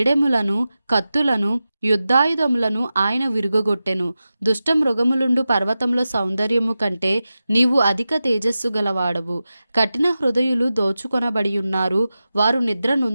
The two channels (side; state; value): both; inverted; correlation -0.94